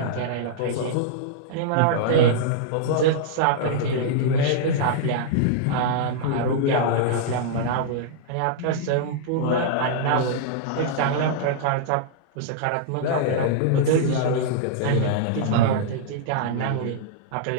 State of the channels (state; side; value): different; both; correlation -0.01